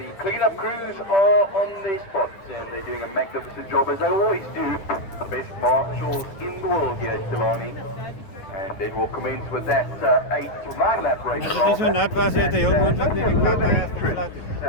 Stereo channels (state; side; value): late; right; 9.7 ms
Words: cleanup crews are on their spots and they're doing a magnificent job as they always do. The best marshals in the world here at Killarney. And then we'll commence with that 8 to 9 lap race. Als het zo nat was, heeft hij heel moeilijk naar de kant